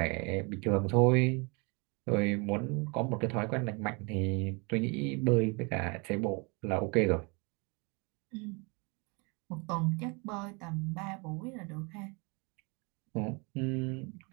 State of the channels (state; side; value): quieter; left; 30.4 dB